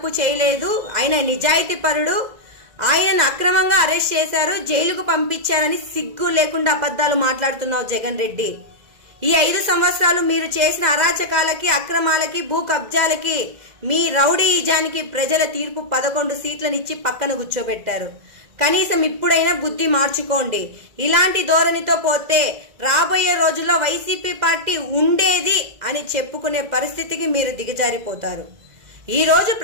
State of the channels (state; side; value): late; left; 2.0 ms